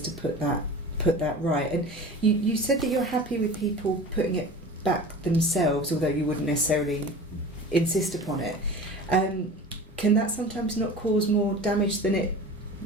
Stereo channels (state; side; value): normal; both; correlation 0.37